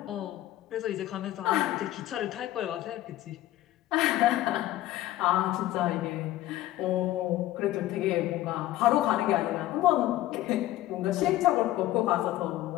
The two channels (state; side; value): quieter; right; 15.0 dB